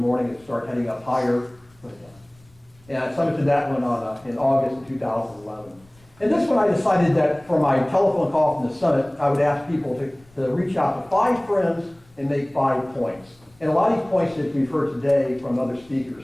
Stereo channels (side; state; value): left; noise; rumble, 30 dB below the sound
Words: It started heading up higher. And I summited that one in August of 2011. And this one I decided that for my telephone call from the summit, I would ask people to reach out to 5 friends and make 5 points. And a lot of these points that we've heard today from other speakers,